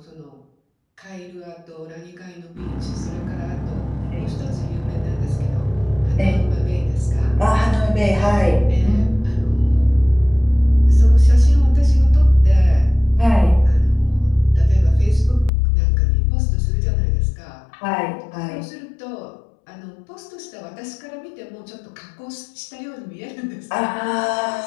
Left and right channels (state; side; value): drops out; right; at 15.5 s